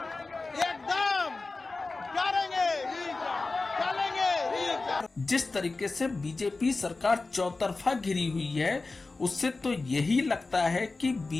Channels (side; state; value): right; quieter; 3.6 dB